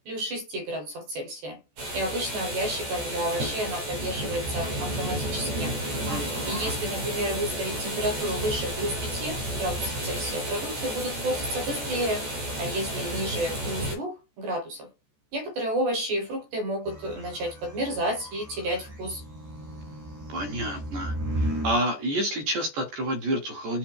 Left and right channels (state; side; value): late; left; 14 ms